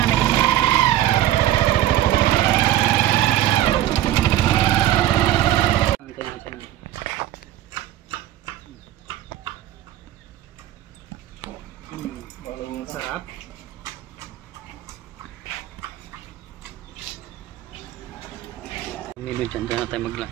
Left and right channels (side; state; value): left; quieter; 13.3 dB